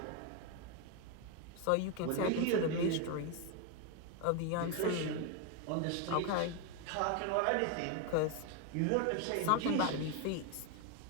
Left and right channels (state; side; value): different; both; correlation 0.01